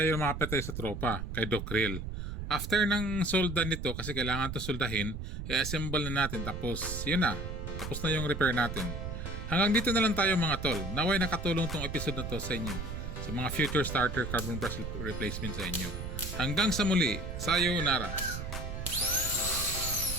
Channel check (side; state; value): right; noise; rumble, 6 dB below the sound